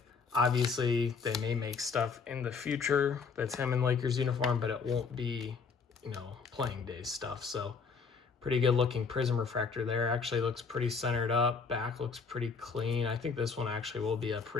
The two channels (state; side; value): quieter; right; 5.3 dB